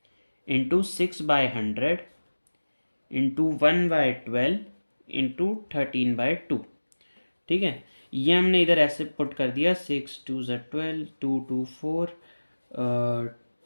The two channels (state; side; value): inverted; both; correlation -1.00